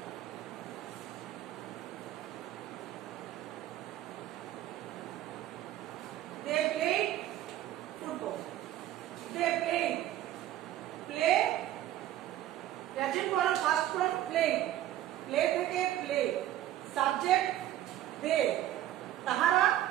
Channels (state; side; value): quieter; left; 13.1 dB